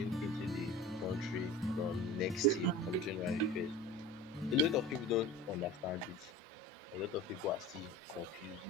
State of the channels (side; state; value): both; normal; correlation 0.37